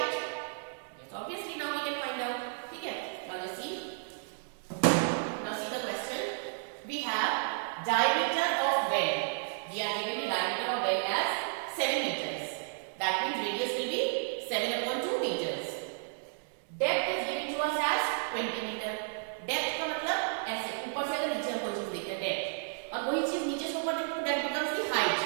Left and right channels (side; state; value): left; silent; digital silence